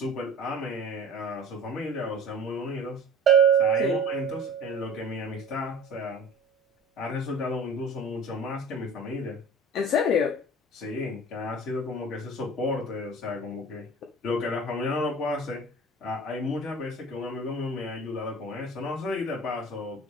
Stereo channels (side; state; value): both; normal; correlation 0.40